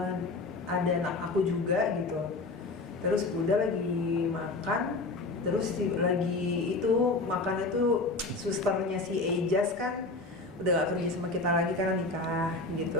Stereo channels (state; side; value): quieter; right; 3.3 dB